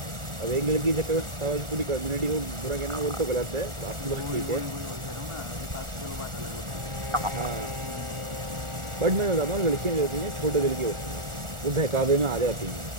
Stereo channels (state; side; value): late; left; 1.4 ms